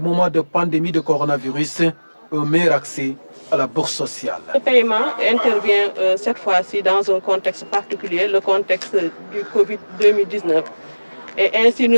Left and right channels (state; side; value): inverted; both; correlation -1.00